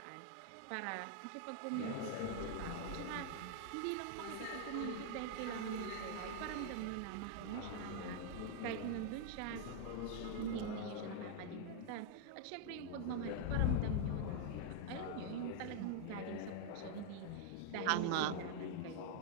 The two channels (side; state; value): both; different; correlation 0.00